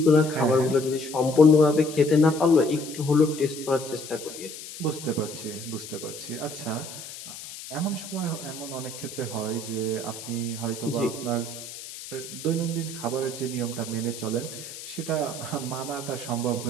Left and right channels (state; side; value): noise; left; hiss, 12 dB below the sound